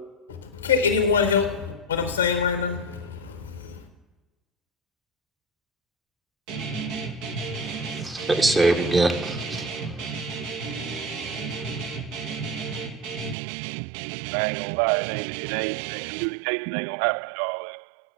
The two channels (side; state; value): left; drops out; at 13.4 s